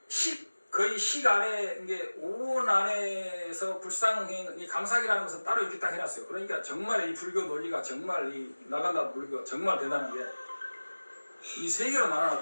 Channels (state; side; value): inverted; both; correlation -1.00